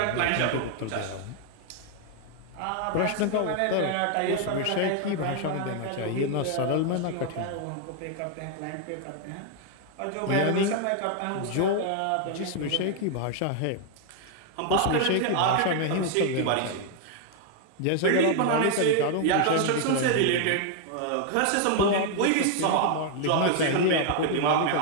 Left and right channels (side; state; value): both; different; correlation 0.00